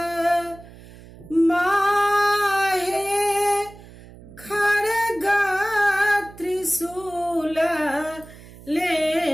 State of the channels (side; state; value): right; noise; hum, 20 dB below the sound